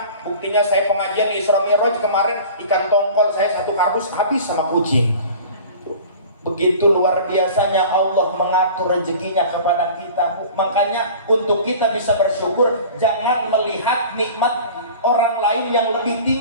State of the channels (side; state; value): both; inverted; correlation -0.42